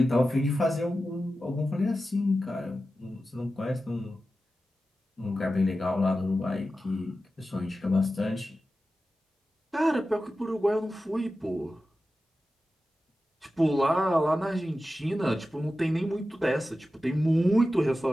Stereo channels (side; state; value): both; normal; correlation 0.93